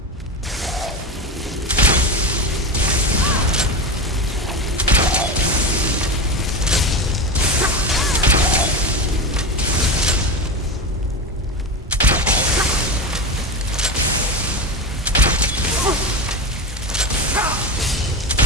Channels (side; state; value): both; normal; correlation 0.21